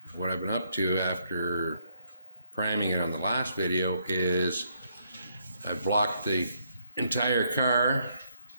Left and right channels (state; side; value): inverted; both; correlation -0.72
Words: What I've been up to after priming it on the last video is I've blocked the entire car